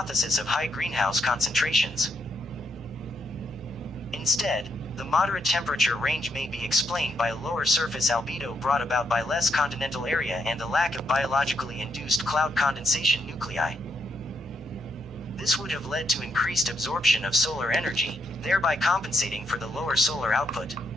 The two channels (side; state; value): both; normal; correlation 0.78